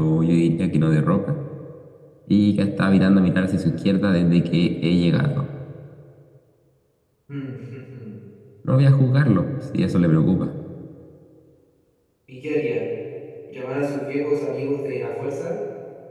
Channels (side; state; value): both; identical; correlation 1.00